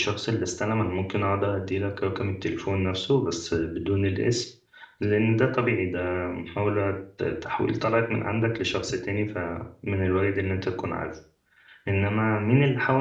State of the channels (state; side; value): identical; both; correlation 1.00